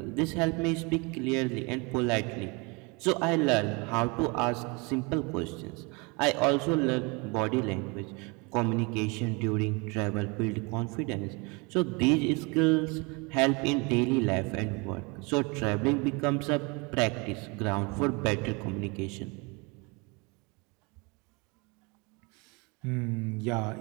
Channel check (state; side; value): quieter; left; 29.1 dB